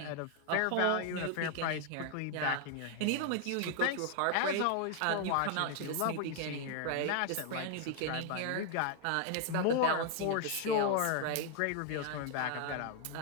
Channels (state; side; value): different; both; correlation 0.00